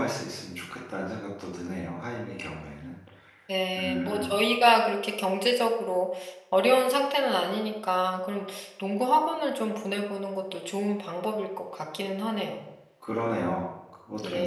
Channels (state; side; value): identical; both; correlation 1.00